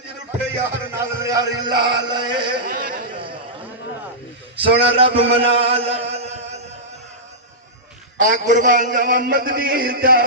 اٹھے یار نال یاری لال سونا رب منا آن قربان جاوان مدنی دا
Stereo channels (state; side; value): normal; both; correlation -0.14